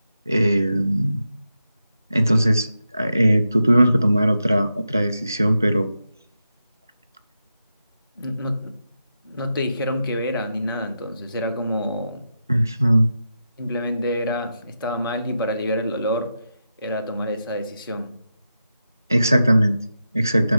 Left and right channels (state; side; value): inverted; both; correlation -0.88